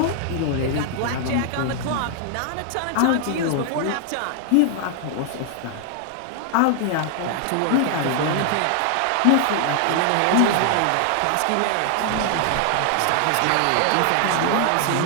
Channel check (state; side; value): different; both; correlation 0.00